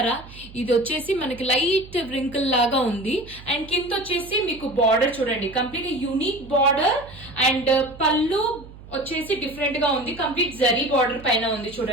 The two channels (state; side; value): noise; right; hum, 18 dB below the sound